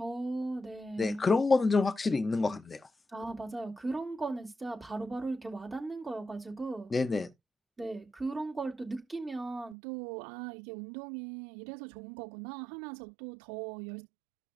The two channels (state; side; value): drops out; left; at 9.8 s